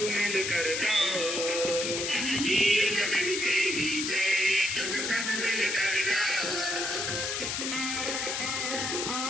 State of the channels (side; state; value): left; noise; hiss, 1 dB below the sound